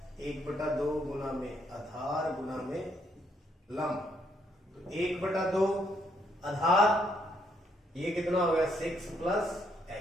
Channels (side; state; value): both; normal; correlation 0.73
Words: 1/2 गुना में आधार गुना में लंब। तो 1/2 आधार, ये कितना हो गया, 6 प्लस